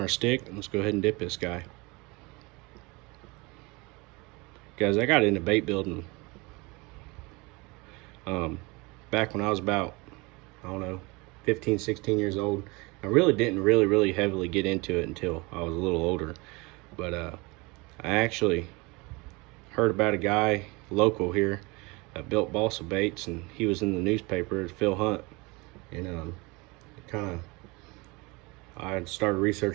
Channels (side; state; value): left; quieter; 25.7 dB